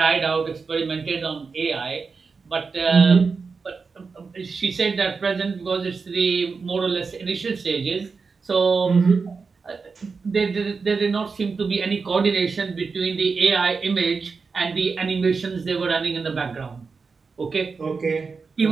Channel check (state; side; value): quieter; left; 4.8 dB